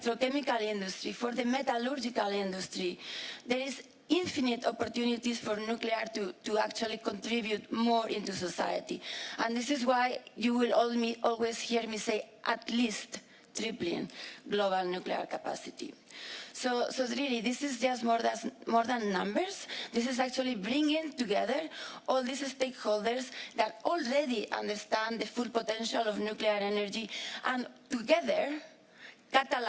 industry, for the metallurgical industry. There is infinite opportunities for nuclear to actually contribute more into society. And this is why you will always hear me say at least tripling global nuclear capacity. So really, this is just more than numbers. This is actually bringing together all these stakeholders that already understand the full potential of nuclear energy, and together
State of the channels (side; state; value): both; identical; correlation 1.00